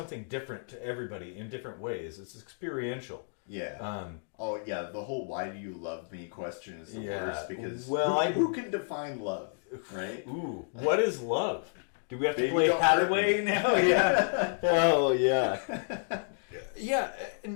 different to everybody in different ways. It's experiential. Yeah. The whole "why do you love me" question is the worst, because who can define love, right? Ooh, what is love? Do we have to play Hathaway now? Yeah. Oh yeah. Yeah,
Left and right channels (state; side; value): silent; right; digital silence